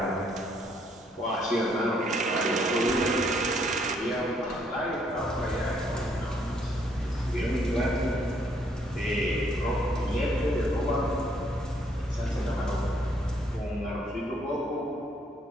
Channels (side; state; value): both; normal; correlation 0.69